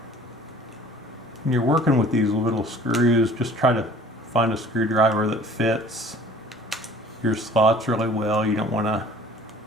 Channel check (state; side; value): normal; both; correlation 0.50